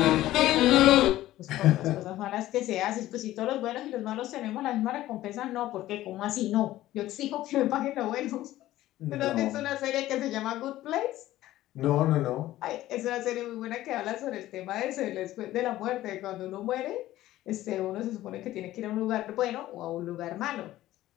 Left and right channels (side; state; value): right; quieter; 15.1 dB